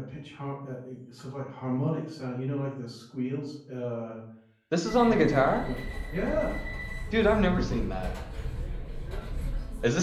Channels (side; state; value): both; identical; correlation 1.00